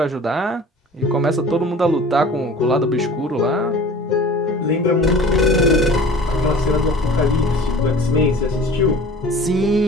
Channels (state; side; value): normal; both; correlation 0.43